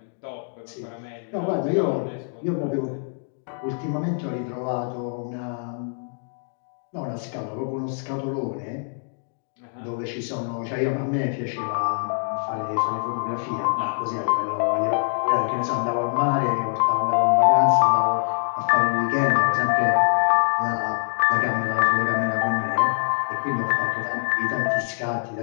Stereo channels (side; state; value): right; silent; 62 dB below the other